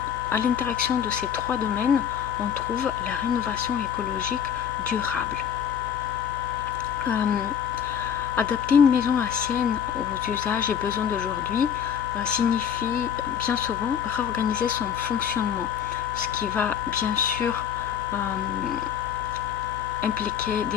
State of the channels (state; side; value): quieter; right; 8.5 dB